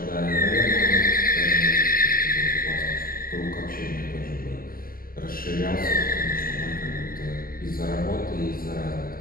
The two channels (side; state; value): right; late; 0.42 ms